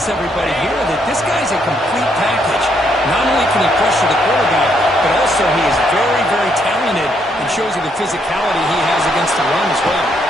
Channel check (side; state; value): both; normal; correlation 0.73